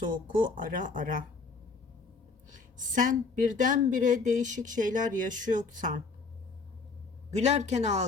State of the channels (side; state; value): right; quieter; 4.3 dB